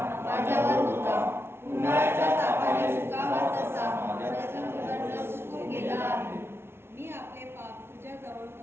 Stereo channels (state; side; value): late; left; 0.12 ms